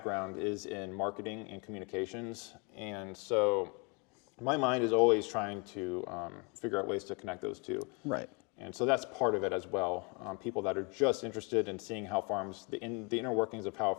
is in marketing and communications. And so my mind is always trying to figure out ways to connect those two. Right. And so that's part of it as well. People that are just interested in seeing how farms, the inner workings of how a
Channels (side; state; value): right; quieter; 32.4 dB